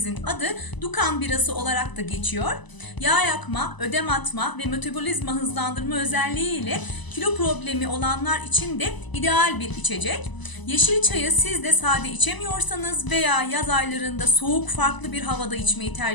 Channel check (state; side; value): late; right; 1.0 ms